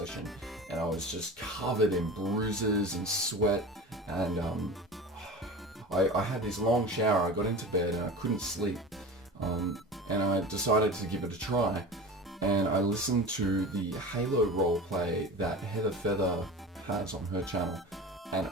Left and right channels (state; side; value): normal; both; correlation 0.32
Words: and I was just covered in bruises and sweat, and I had this long shower. I got into bed and I couldn't sleep, and I decided to give it a try, and I listened to the Halo roleplay that Heather Feather has on her channel, and